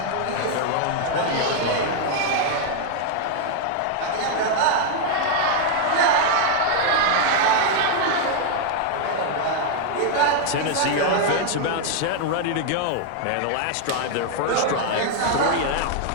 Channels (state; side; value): different; both; correlation 0.00